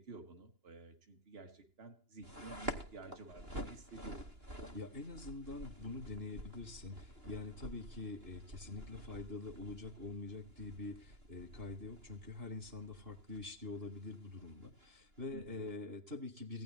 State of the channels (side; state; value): left; late; 2.9 ms